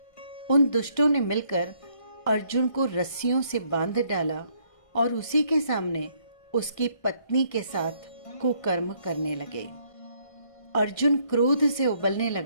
उन दुष्टों ने मिलकर अर्जुन को रस्सियों से बांध डाला और उसी के सामने उसकी पत्नी के साथ कुकर्म करने लगे। अर्जुन क्रोध से उबलने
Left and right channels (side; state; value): right; late; 1.6 ms